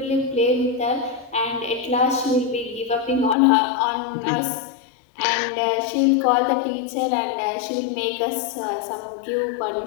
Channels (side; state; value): right; drops out; at 3.4 s